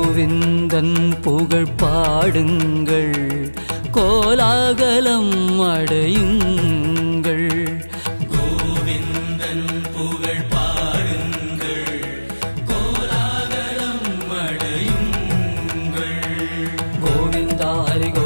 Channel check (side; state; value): both; inverted; correlation -1.00